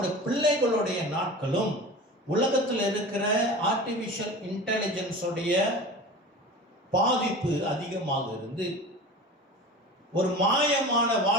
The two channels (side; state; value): both; normal; correlation 0.34